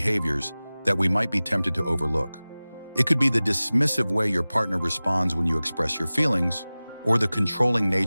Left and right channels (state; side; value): inverted; both; correlation -0.98